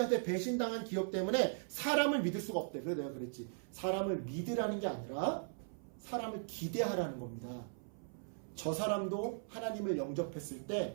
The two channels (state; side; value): silent; left; 52 dB below the other